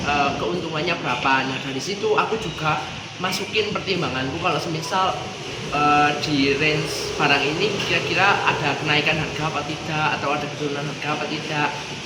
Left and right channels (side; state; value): both; identical; correlation 1.00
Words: keuntungannya berapa. Nah dari situ aku juga masukin pertimbanganku kalau semisal di range barang ini kira-kira ada kenaikan harga apa tidak atau ada penurunan harga apa tidak.